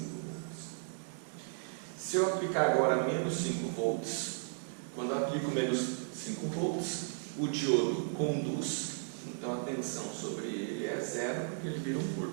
volts. Se eu aplicar agora menos 5 volts, quando eu aplico menos 5 volts, o diodo conduz, então a tensão sobre ele é zero, porque ele vira um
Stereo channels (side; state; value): left; silent; digital silence